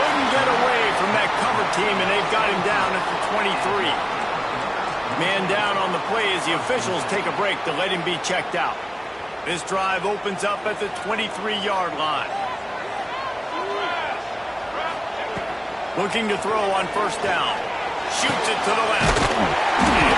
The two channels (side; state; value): both; identical; correlation 1.00